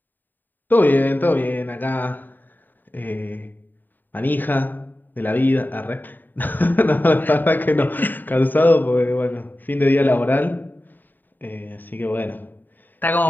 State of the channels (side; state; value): right; late; 0.090 ms